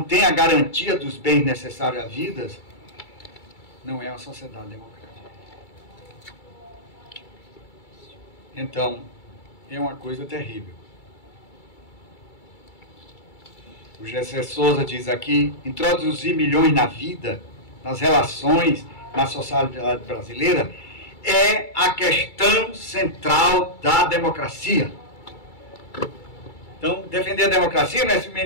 tem a garantia dos bens necessários à vida, não é uma sociedade democrática. Então, é uma coisa terrível. O Gessé Souza diz aqui: introduzir milhões na vida, nas relações, na sociedade brasileira, é a questão central da democracia. Então, defender a democracia não é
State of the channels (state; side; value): late; right; 2.3 ms